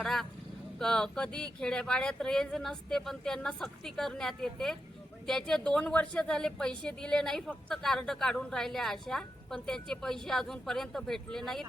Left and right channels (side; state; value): both; normal; correlation 0.87